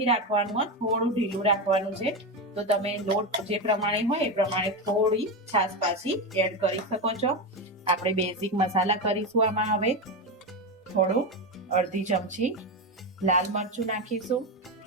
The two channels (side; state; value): both; normal; correlation 0.14